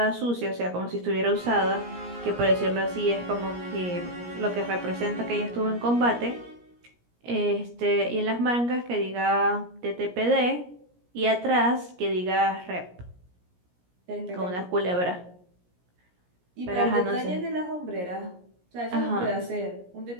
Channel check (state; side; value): late; left; 17 ms